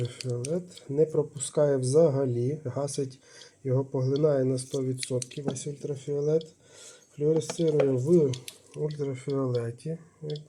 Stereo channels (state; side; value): identical; both; correlation 1.00